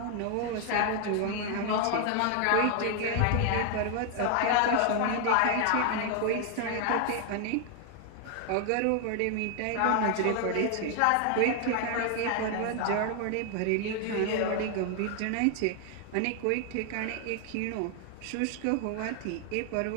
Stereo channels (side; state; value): both; different; correlation 0.00